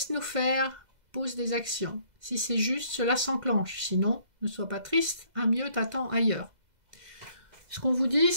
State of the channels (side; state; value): left; late; 2.0 ms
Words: faire, pose des actions. Si c'est juste, cela s'enclenche. Sinon, ne sois pas triste, un mieux t'attend ailleurs. Ce qu'on vous dit,